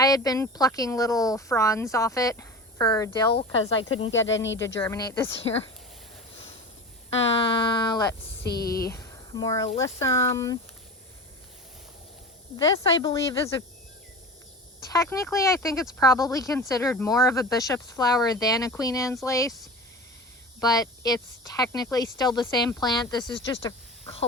had been plucking little fronds off it for dill because I couldn't get any to germinate this year. Let's see, more alyssum. This, I believe, is technically, I think it's probably considered more of a bishop's flower than a Queen Anne's lace. but it's technically still the same plant. This is just a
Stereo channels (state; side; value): normal; both; correlation 0.32